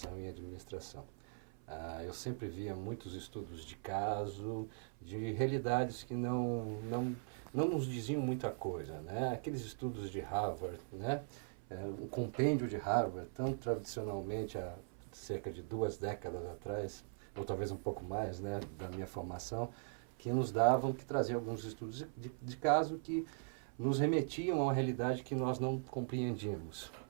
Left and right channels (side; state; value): left; silent; 51 dB below the other